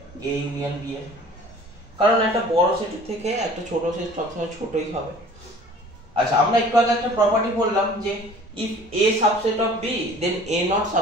A ইউনিয়ন B এর, কারণ একটা বড় সেটের থেকে একটা ছোট সেট সবসময় ছোটই হবে। আচ্ছা, আমরা একটু আগে একটা প্রপার্টি বললাম যে if A subset of B then A not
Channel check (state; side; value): normal; both; correlation 0.48